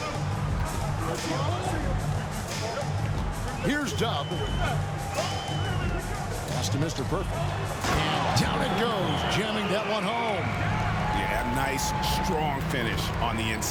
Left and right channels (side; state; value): both; identical; correlation 1.00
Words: Here's Dub. Pass to Mr. Perfect. And down it goes, jamming that one home. Yeah, nice, strong finish on the